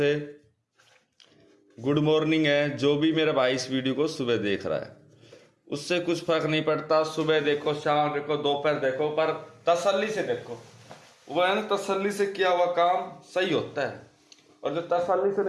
गुड मॉर्निंग है। जो भी मेरा भाई इस वीडियो को सुबह देख रहा है उससे कुछ फर्क नहीं पड़ता, सुबह देखो, शाम देखो, दोपहर देखो, पर तसल्ली से देखो। वो है ना, तसल्ली से किया हुआ काम सही होता है। और जो तसल्ली से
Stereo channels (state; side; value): identical; both; correlation 1.00